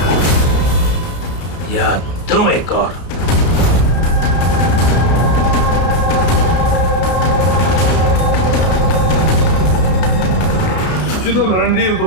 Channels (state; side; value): late; right; 32 ms